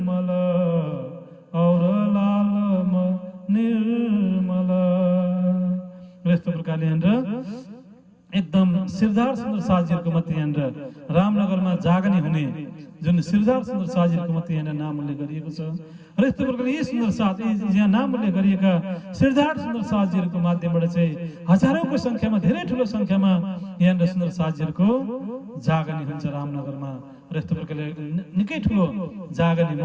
और लालमन निर्मल। यस्तो प्रकारले एकदम श्रीधर सुन्दर साथजीहरूको मात्रै यहाँनिर रामनगरमा जागनी हुने जुन श्रीधर सुन्दर साथजीहरूको मात्रै यहाँनिर नाम उल्लेख गरिएको छ। र यस्तो प्रकारले यी सुन्दर साथ, यहाँ नाम उल्लेख गरिएका श्रीधर सुन्दर साथजीहरूको माध्यमबाट चाहिँ हजारौंको संख्यामा, धेरै ठुलो संख्यामा यहाँनिर सुन्दर साथजीहरूको जागनी हुन्छ रामनगरमा। र यस्तो प्रकारले निकै ठुलो जागनी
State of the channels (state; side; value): identical; both; correlation 1.00